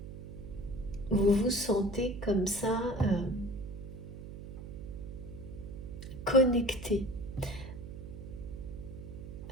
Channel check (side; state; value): right; noise; hum, 10 dB below the sound